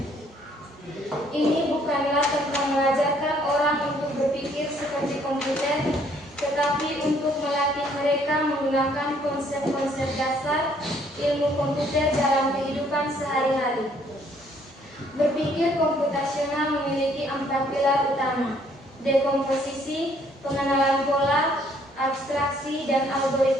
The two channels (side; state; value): both; normal; correlation 0.64